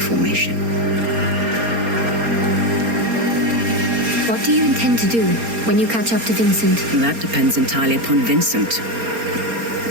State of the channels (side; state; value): left; late; 4.3 ms